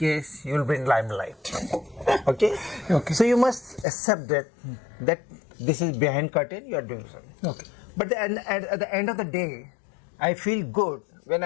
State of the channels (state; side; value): drops out; right; at 3.9 s